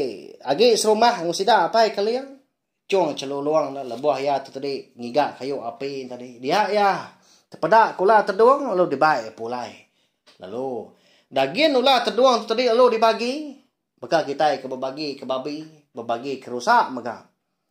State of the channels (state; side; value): identical; both; correlation 1.00